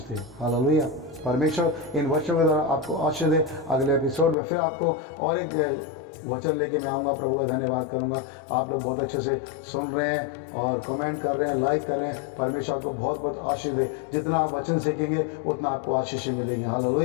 दे। हालेलुया। परमेश्वर इन वचनों के द्वारा आपको आशीष दे। अगले एपिसोड में फिर आपको और एक वचन लेके मैं आऊँगा, प्रभु का धन्यवाद करूँगा। आप लोग बहुत अच्छे से सुन रहे हैं और कमेंट कर रहे हैं, लाइक कर रहे हैं। परमेश्वर आपको बहुत बहुत आशीष दे। जितना आप वचन सीखेंगे उतना आपको आशीष मिलेगी।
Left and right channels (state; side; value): drops out; right; at 4.4 s